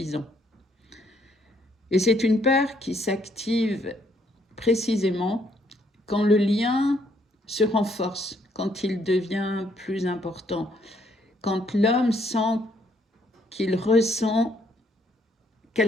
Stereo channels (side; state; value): both; normal; correlation 0.69